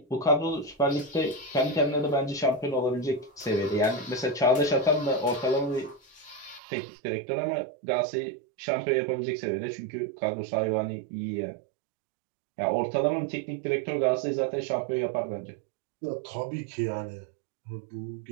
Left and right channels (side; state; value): left; drops out; at 6.6 s